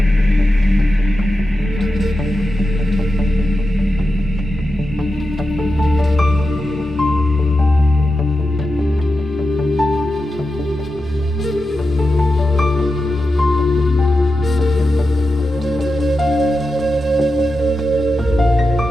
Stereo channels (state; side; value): normal; both; correlation 0.90